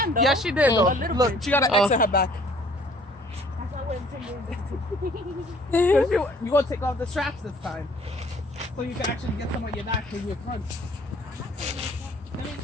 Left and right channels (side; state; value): both; normal; correlation 0.57